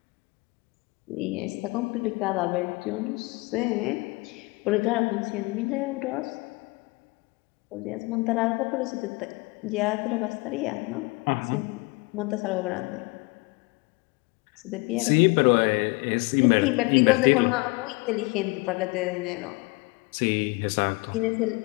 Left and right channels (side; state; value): right; quieter; 26.1 dB